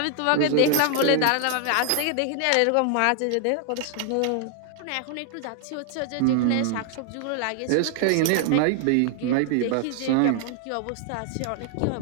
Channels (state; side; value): different; both; correlation 0.00